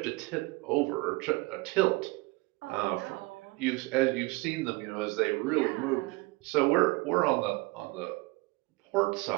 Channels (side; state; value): left; quieter; 23.8 dB